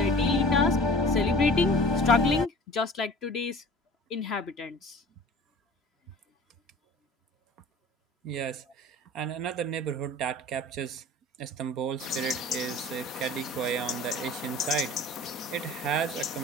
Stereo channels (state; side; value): normal; both; correlation 0.43